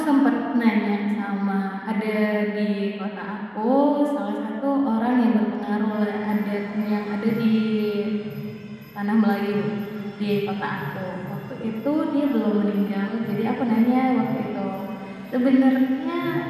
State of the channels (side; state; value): both; identical; correlation 1.00